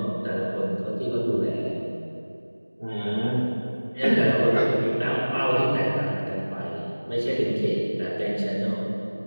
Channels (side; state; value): both; inverted; correlation -1.00